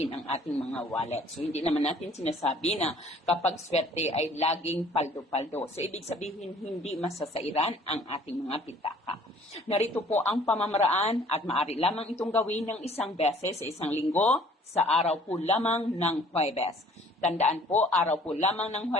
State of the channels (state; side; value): normal; both; correlation 0.54